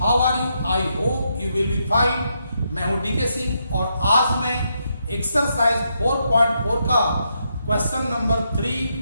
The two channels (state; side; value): inverted; both; correlation -0.80